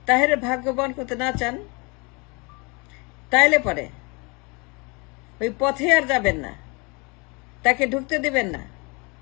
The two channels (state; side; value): quieter; right; 29.7 dB